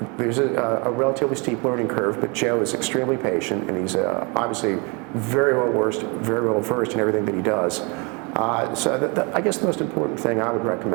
There's a relatively steep learning curve, but Joe is extremely patient, and he's obviously very well versed in everything that he does. So I guess the most important thing I would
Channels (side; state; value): left; quieter; 31.0 dB